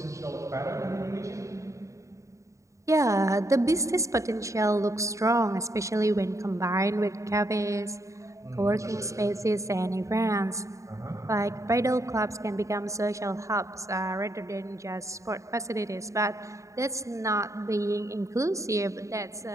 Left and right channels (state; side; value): late; left; 0.15 ms